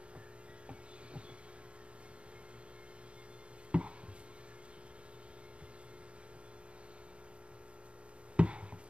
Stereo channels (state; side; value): late; left; 0.059 ms